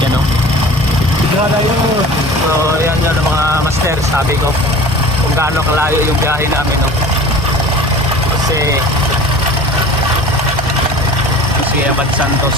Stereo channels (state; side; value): normal; both; correlation 0.41